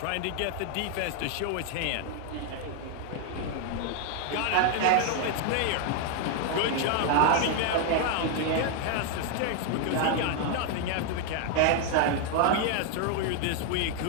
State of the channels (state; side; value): different; both; correlation 0.00